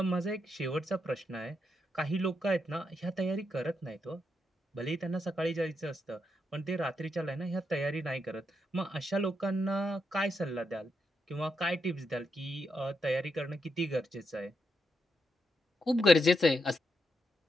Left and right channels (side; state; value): both; normal; correlation 0.81